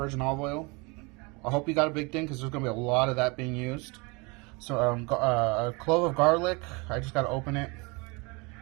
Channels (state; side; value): quieter; left; 28.3 dB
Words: olive oil. I hope you got a big thing because there's going to be a lot of that being used. So a clove of garlic. I just got to open it.